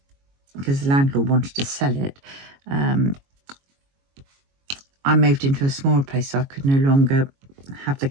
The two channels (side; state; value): left; late; 22 ms